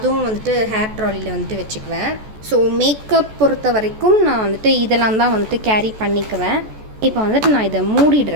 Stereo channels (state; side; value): late; left; 14 ms